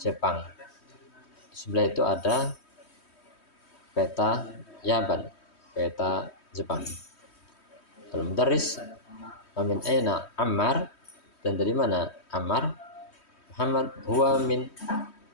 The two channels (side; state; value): right; late; 3.2 ms